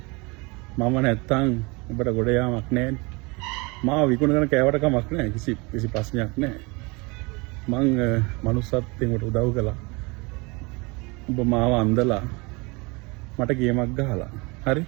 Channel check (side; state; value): left; quieter; 27.1 dB